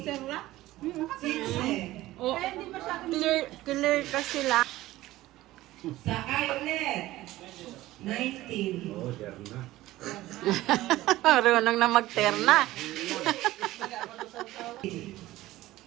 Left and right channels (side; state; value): left; quieter; 16.5 dB